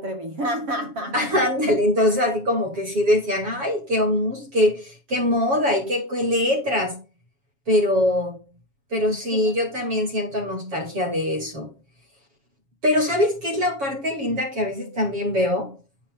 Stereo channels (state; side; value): late; left; 7.2 ms